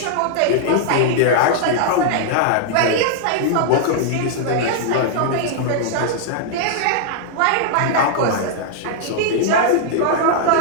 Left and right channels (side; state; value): both; different; correlation -0.01